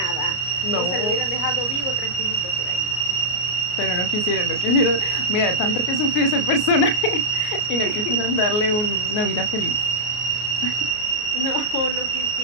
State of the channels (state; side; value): late; right; 33 ms